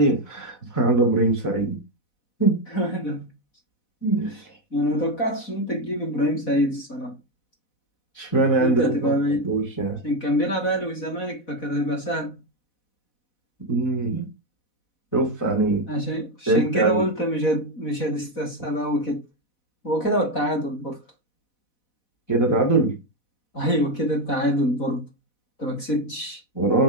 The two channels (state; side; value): late; right; 4.1 ms